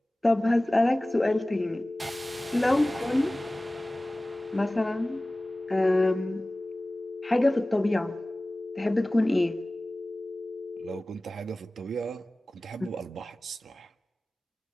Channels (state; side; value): normal; both; correlation 0.98